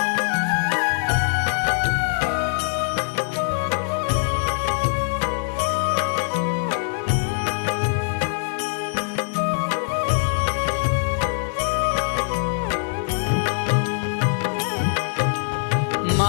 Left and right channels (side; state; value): right; silent; digital silence